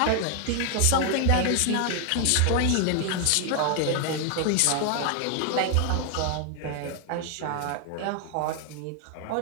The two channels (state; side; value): different; both; correlation 0.00